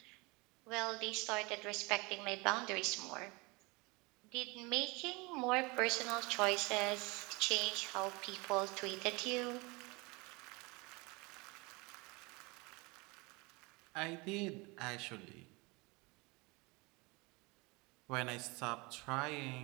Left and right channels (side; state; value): left; quieter; 26.2 dB